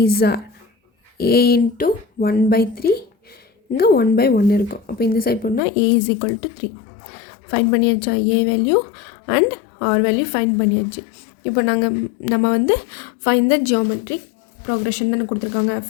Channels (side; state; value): right; drops out; at 5.6 s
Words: are a into 1 by 3. இங்கே 1 by 1 இருக்கும். அப்போ இந்த side போனால் a is equal to 3. Find பண்ணியாச்சா, a value and r value find பண்ணியாச்சு. இப்போ நம்ம வந்து ஃபைண்ட் த ஜியோமெட்ரிக் ப்ரோக்ரெஷன் தானே கொடுத்துருக்காங்க.